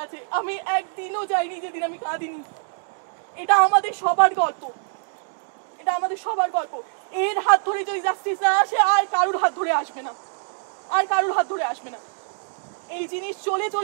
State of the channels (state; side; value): silent; left; digital silence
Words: আছে। আমি একদিনও যাইনি যেদিন আমি কাঁদিনি, এটা আমাদের সবার গল্প, এটা আমাদের সবার গল্প। এর হাত ধরে যদি জাস্টিস না আসে আর কারুর হাত ধরে আসবে না, আর কারুর হাত ধরে আসবে না। এই জিনিস চলে